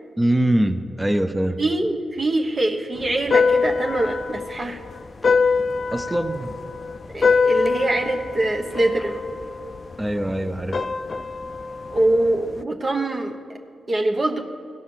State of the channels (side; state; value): both; normal; correlation 0.92